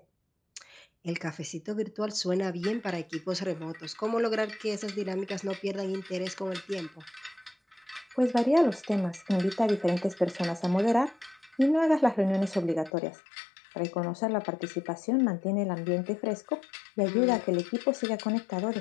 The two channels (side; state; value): right; drops out; at 12.9 s